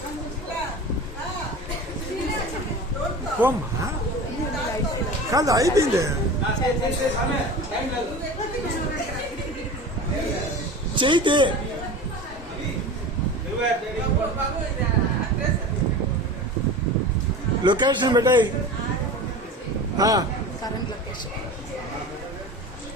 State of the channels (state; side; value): normal; both; correlation 0.33